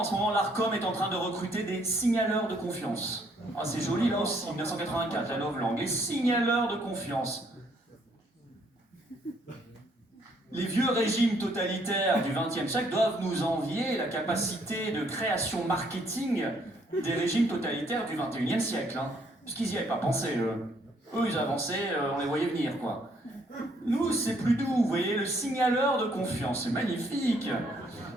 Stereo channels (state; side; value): normal; both; correlation 0.67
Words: ce moment l'ARCOM est en train de recruter des signaleurs de confiance. Ah, c'est joli là aussi, 1984, la novlangue, les signaleurs de confiance. Les vieux régimes totalitaires du XXe siècle doivent nous envier la capacité de création marketing des régimes totalitaires du XXIe siècle. Hein. Parce qu'ils n'y avaient pas pensé, eux. Eux, ils avançaient, on les voyait venir, quoi. Nous, c'est plus doux, vous voyez, le signaleur de confiance, c'est magnifique.